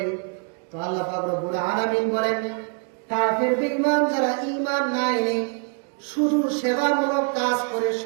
তো আল্লাহ পাক রব্বুল আলামিন বলেন, কাফের বেঈমান যারা ঈমান না এনে শুধু সেবামূলক কাজ করে,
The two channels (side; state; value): left; quieter; 38.6 dB